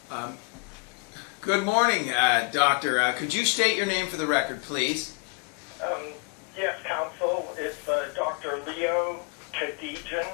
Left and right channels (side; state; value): right; quieter; 29.5 dB